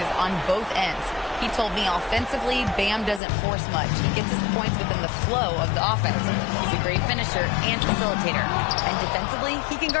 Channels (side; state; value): right; drops out; at 3.2 s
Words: on both ends. He told me offensively, Bam doesn't force much. He gets his points within the flow of the offense. He's a great finisher and facilitator. And defensively, he can